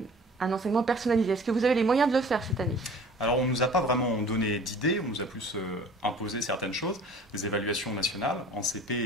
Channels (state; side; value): normal; both; correlation 0.46